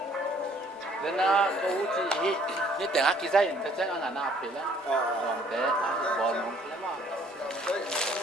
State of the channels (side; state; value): both; normal; correlation 0.60